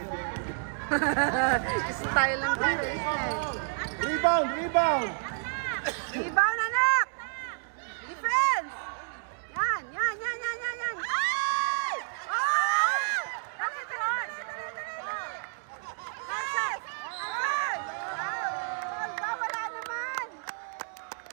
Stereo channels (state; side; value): silent; left; 58 dB below the other